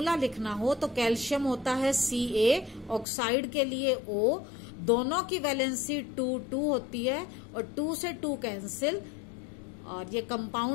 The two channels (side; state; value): right; drops out; at 3.1 s